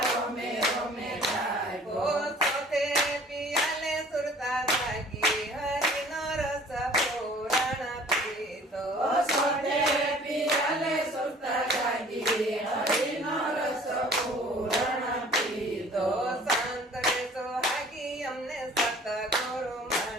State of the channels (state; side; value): normal; both; correlation 0.51